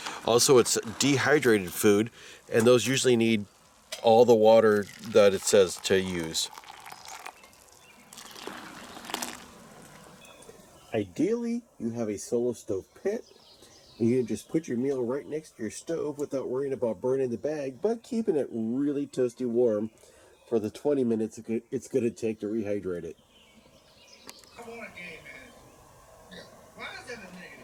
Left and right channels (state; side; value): identical; both; correlation 1.00